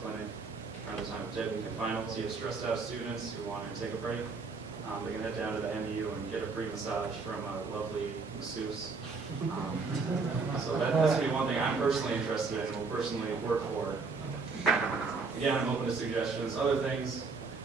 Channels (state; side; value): quieter; left; 4.4 dB